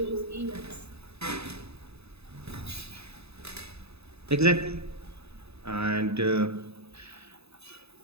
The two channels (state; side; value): late; left; 0.79 ms